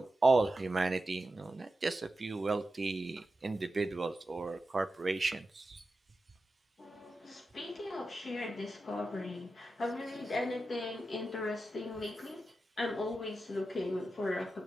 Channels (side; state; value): both; normal; correlation 0.91